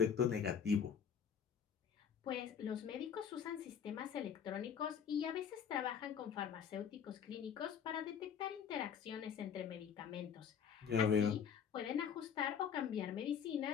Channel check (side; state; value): right; quieter; 7.5 dB